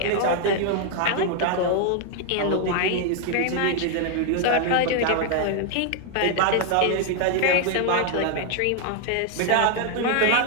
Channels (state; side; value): different; both; correlation 0.00